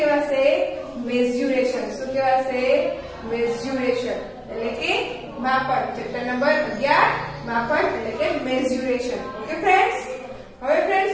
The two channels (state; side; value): identical; both; correlation 1.00